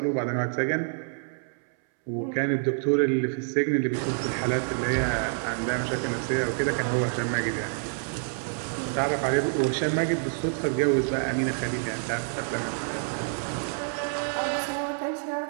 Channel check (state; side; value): silent; left; 60 dB below the other